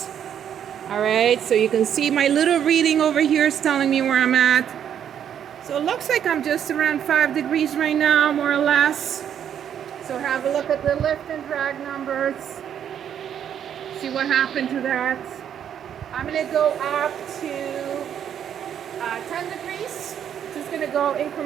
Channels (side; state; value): left; quieter; 9.2 dB